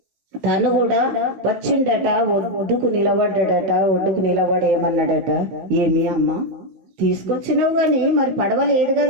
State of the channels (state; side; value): late; left; 15 ms